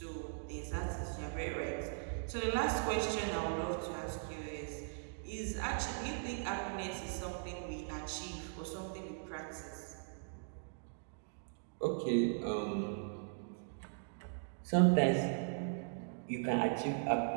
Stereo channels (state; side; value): silent; left; digital silence